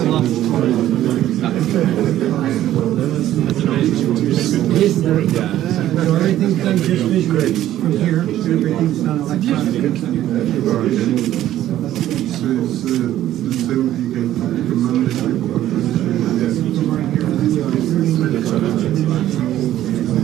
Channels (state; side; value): quieter; left; 13.0 dB